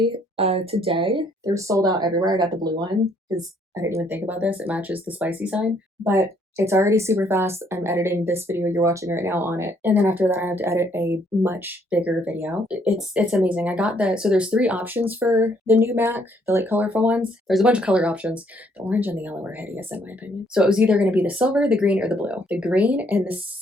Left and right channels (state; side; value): normal; both; correlation 0.67